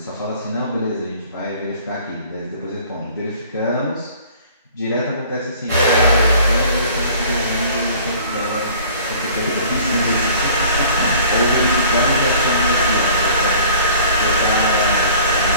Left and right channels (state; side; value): inverted; both; correlation -0.50